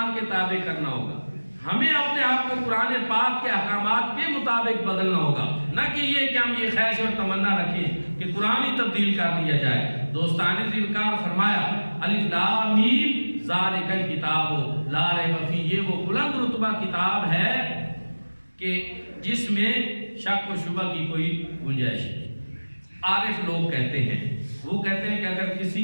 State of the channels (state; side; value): inverted; both; correlation -1.00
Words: کے تابع کرنا ہوگا، ہمیں اپنے آپ کو قرآن پاک کے احکامات کے مطابق بدلنا ہوگا، نہ کہ یہ کہ ہم یہ خواہش اور تمنا رکھیں کہ قرآن ہی تبدیل کر دیا جائے۔ دوستان وقار، فرمایا الف لام میم ذالک الکتاب لا ریب فیہ، یہ وہ بلند رتبہ کتاب ہے کہ جس میں شک و شبہ کی کوئی گنجائش نہیں۔ عارف لوگ کہتے ہیں، وہ کہتے ہیں کہ اگر کسی